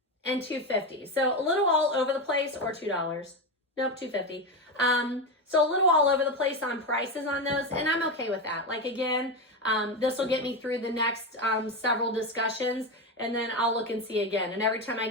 and $2.50. So a little all over the place, or $2. Nope, $2.50. So a little all over the place on prices on those, and I'm okay with that. Like again, this will get me through the next several discussions, and then I'll look and see again. And every time I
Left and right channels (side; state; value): both; normal; correlation 0.15